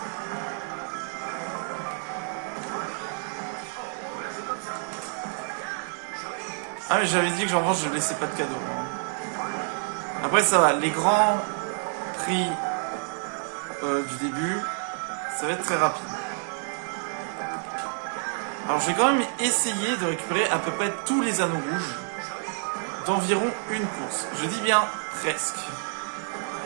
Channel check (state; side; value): silent; left; 59 dB below the other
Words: Ah mais j'avais dit que genre je laissais pas de cadeaux. Après ça va, les grands prix du début, ça va être très rapide. Alors je vais quand même essayer de récupérer à peu près tous les anneaux rouges d'environ une course. Je dis bien presque.